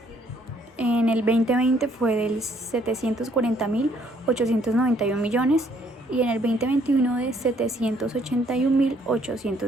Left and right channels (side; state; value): both; normal; correlation 0.65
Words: en el 2020 fue del 740.891 millones, y en el 2021 de